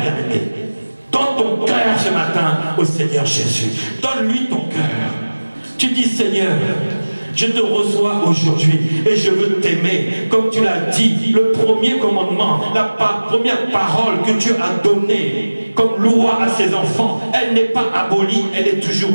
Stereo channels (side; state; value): both; inverted; correlation -1.00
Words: bien-aimé? Donne ton cœur ce matin au Seigneur Jésus. Donne-lui ton cœur. Tu dis, Seigneur, je te reçois aujourd'hui et je veux t'aimer. Comme tu l'as dit, le premier commandement, la première parole que Dieu a donnée comme loi à ses enfants. Elle n'est pas abolie, elle est toujours